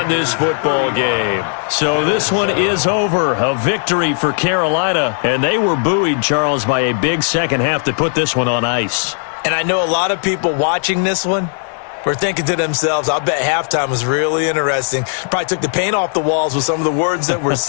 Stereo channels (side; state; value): right; silent; digital silence